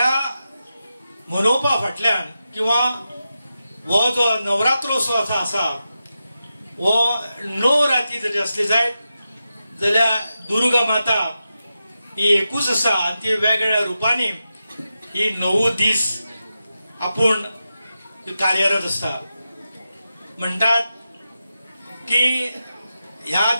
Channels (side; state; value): both; inverted; correlation -0.90